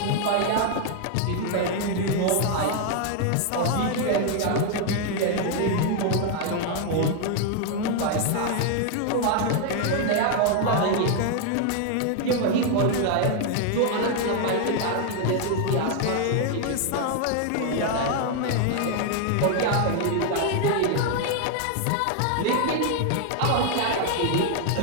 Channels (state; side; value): different; both; correlation 0.00